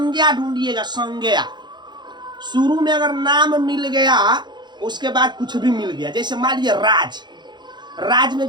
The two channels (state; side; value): late; left; 0.21 ms